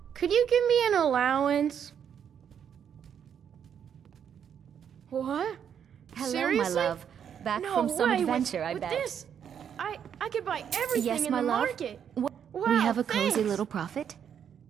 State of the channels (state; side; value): quieter; left; 8.3 dB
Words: Could you give me an allowance? What? Hello, Seriously? my love. Back No from some way. adventure, I with bet. This, I could buy everything Yes, in my the love. market. We Wow, have a cozy thanks. little profit.